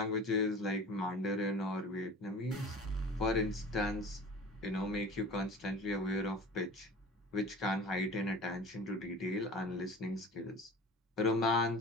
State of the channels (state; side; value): normal; both; correlation 0.40